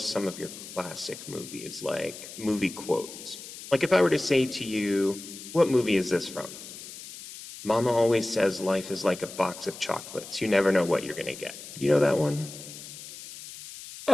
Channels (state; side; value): noise; left; hiss, 14 dB below the sound